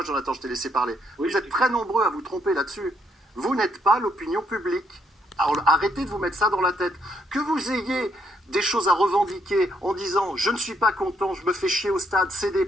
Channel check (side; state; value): both; normal; correlation 0.73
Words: Jonathan, je t'ai laissé parler. Vous êtes très nombreux à vous tromper là-dessus. Vous n'êtes pas l'opinion publique. Alors, arrêtez de vous mettre ça dans la tête. Que vous ayez des choses à revendiquer en disant « je ne suis pas content, je me fais chier au stade, c'est des